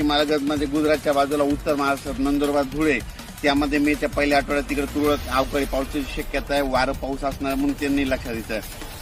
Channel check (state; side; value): identical; both; correlation 1.00